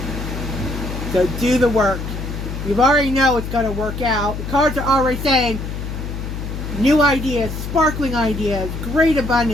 So do the work. You already know it's going to work out. The cards are already saying new ideas, sparkling ideas, great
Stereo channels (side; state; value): left; noise; hum, 6 dB below the sound